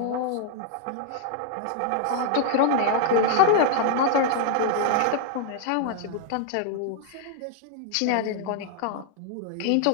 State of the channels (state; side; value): different; both; correlation -0.01